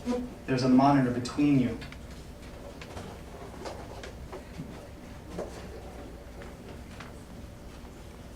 there's a monitor between you.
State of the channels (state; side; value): identical; both; correlation 1.00